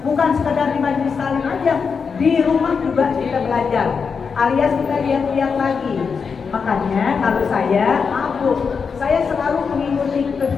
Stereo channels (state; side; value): quieter; right; 5.7 dB